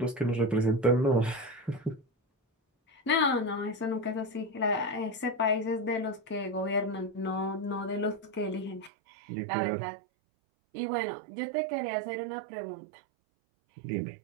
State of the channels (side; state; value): left; drops out; at 8.9 s